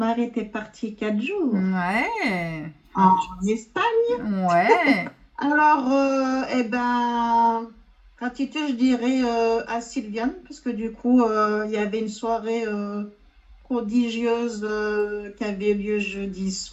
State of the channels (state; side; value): identical; both; correlation 1.00